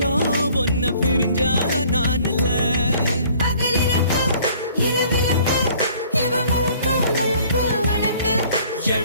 ஒன்ன பிரிஞ்சா நான் இல்ல பகலிரக்கு இரவிரக்கு இவ முழுக்க முழுக்க உனக்கு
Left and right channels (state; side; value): inverted; both; correlation -0.56